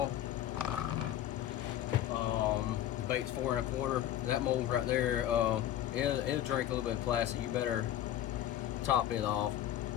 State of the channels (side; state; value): right; quieter; 12.0 dB